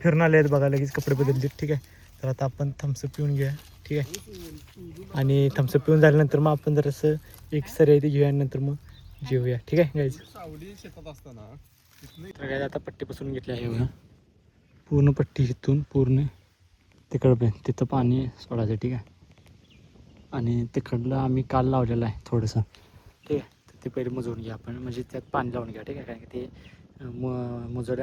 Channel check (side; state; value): both; identical; correlation 1.00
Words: फिरून आले आहेत बघा. लगेच कपडे बदलले. ठीक आहे. तर आता आपण थम्सअप पिऊन घेऊया. ठीक आहे. आणि थम्सअप पिऊन झाल्यानंतर मग आपण जरासं एक सर ते घेऊया आणि नंतर मग जेवूया. ठीक आहे गाईज. तर गाईज आता पट्टी बसून घेतली आहे बघा. पूर्ण पट्टी इथून पूर्ण तिकडं तिथं पाणी सोडायचं. ठीक आहे. आणि तिकडलं आम्ही काल लावलेलं आहे थोडंसं. ठीक आहे. तर ते पहिले मुजवून घ्या आपण, म्हणजे त्यात पाणी लावून घ्या. ठीक आहे. कारण की ते